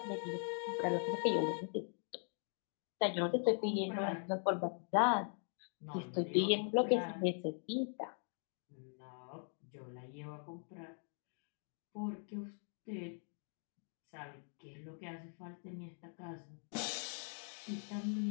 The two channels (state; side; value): silent; right; 50 dB below the other